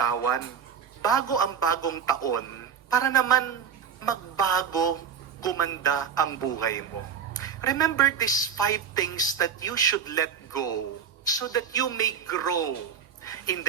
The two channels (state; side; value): quieter; left; 7.3 dB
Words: bago ang bagong taon para naman magbago, gumanda ang buhay mo. Remember these 5 things that you should let go so that you may grow in